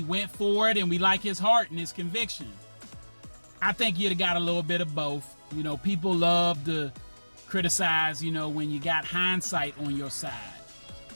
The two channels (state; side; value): inverted; both; correlation -1.00